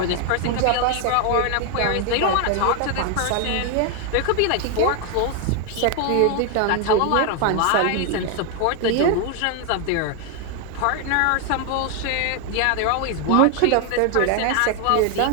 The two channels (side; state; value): both; different; correlation 0.01